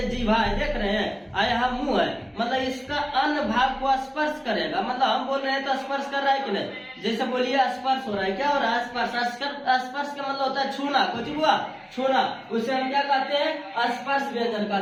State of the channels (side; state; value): both; identical; correlation 1.00